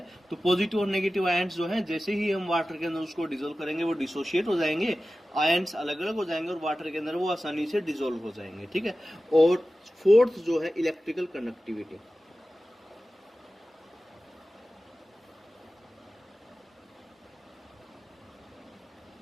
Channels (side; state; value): both; normal; correlation 0.95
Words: तो पॉजिटिव और नेगेटिव आयन्स जो हैं, जैसे ही हम वाटर के अंदर उसको डिसोल्व करेंगे वो डिसोशिएट हो जाएंगे, आयन्स अलग अलग हो जाएंगे और वाटर के अंदर वो आसानी से डिसोल्व हो जाएंगे। ठीक है, और फोर्थ जो है इलेक्ट्रिकल कंडक्टिविटी।